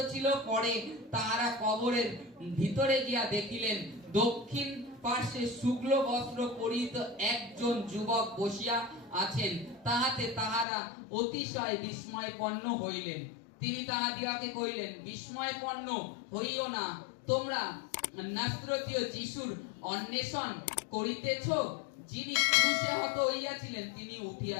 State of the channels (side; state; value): right; drops out; at 10.7 s